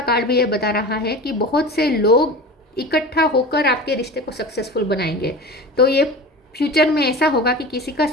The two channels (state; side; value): normal; both; correlation 0.33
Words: कार्ड भी ये बता रहा है कि बहुत से लोग इकट्ठा होकर आपके रिश्ते को सक्सेसफुल बनाएंगे। तो ये फ्यूचर में ऐसा होगा कि किसी का